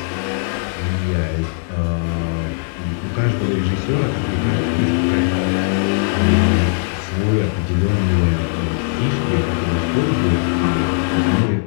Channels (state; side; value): silent; right; digital silence